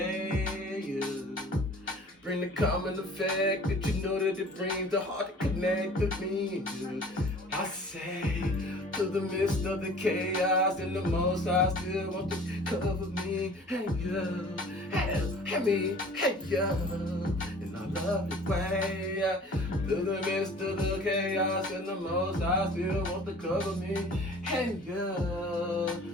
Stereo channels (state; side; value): normal; both; correlation 0.47